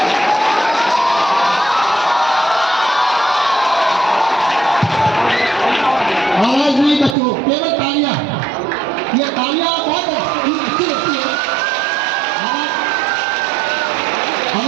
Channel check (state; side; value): drops out; left; at 7.2 s